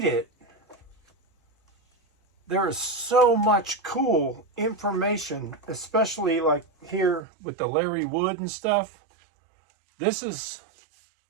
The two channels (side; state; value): left; drops out; at 7.2 s